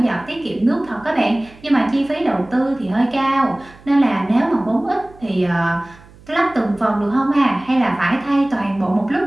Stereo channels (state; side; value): noise; right; hum, 24 dB below the sound